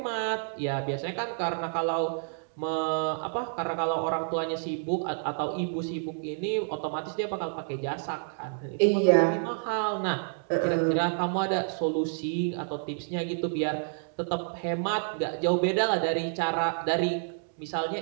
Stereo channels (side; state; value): left; silent; digital silence